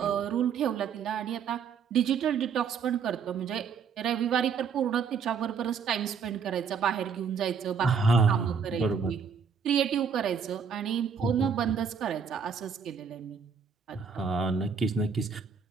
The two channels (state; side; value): quieter; left; 6.2 dB